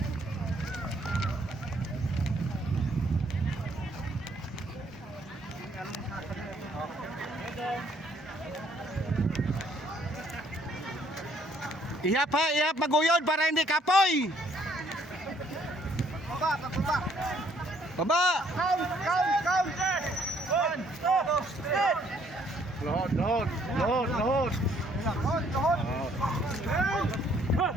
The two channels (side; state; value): both; normal; correlation 0.65